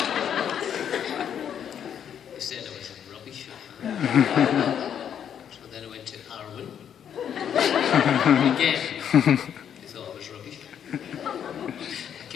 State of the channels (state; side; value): quieter; right; 8.8 dB